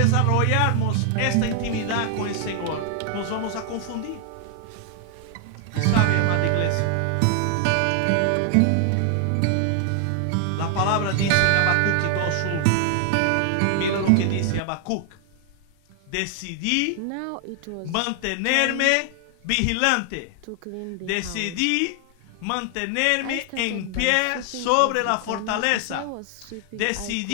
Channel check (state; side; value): different; both; correlation 0.00